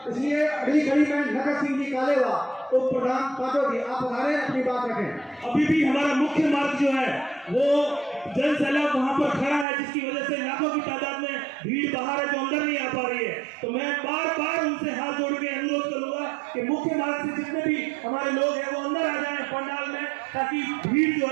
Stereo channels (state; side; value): drops out; left; at 9.7 s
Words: इसलिए अगली कड़ी में नगर सिंह जी कालेवा, उप प्रधान पाटोदी, आप अपनी बात रखें। अभी भी हमारा मुख्य मार्ग जो है वो जन सैलाब वहां पर खड़ा है, जिसकी वजह से लाखों की तादाद में भीड़ बाहर है जो अंदर नहीं आ पा रही है। तो मैं बार बार उनसे हाथ जोड़ के अनुरोध करूंगा कि मुख्य मार्ग से जितने भी हमारे लोग हैं वो अंदर आ जाएं पंडाल में, ताकि भीड़ जो